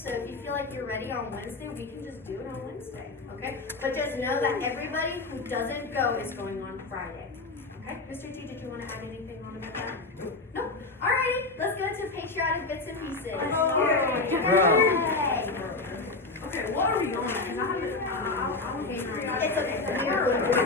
if you feel like you're ready on Wednesday, we can just do it on Wednesday, okay? But just know that everybody who doesn't go is going on Friday, okay? Mr. T, did you want to add anything on about that? No? Alrighty, let's go to patriotic bits and pieces. Yay! Okay, what are we on? Because I haven't. It's okay, we are going to do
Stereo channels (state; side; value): quieter; right; 3.5 dB